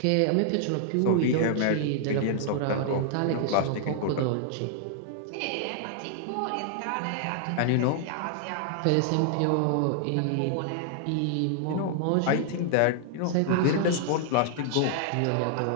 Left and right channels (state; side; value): different; both; correlation -0.01